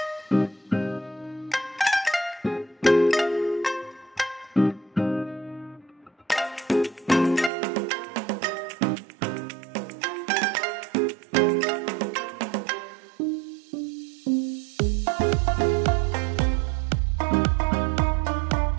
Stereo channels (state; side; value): drops out; left; at 7.5 s